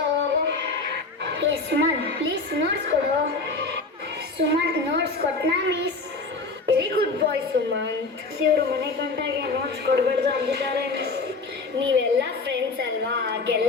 ಹೋಗು. ಸುಮನ್ ಪ್ಲೀಸ್ ನೋಟ್ಸ್ ಕೊಡು. ಸುಮಂತ್ ನೋಟ್ಸ್ ಕೊಟ್ನಾ miss? Very good boy Sumanth. ಇವರು ಮನೆ ಗಂಟಾಗೆ ನೋಟ್ಸ್ ಕೊಡಬಾರ್ದು ಅಂದಿದ್ದಾರೆ ಮಿಸ್. ನೀವೆಲ್ಲ ಫ್ರೆಂಡ್ಸ್ ಅಲ್ವಾ,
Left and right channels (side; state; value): right; quieter; 3.8 dB